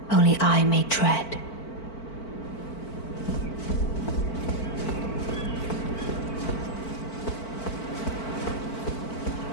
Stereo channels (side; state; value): right; late; 4.5 ms